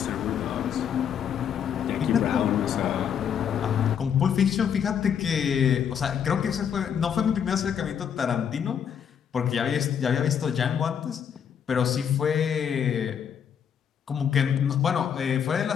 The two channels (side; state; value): right; quieter; 8.1 dB